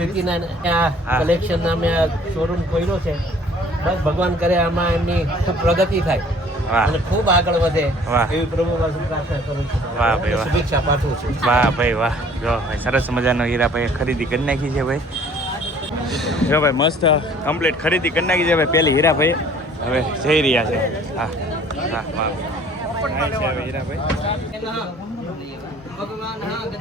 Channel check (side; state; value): both; normal; correlation 0.54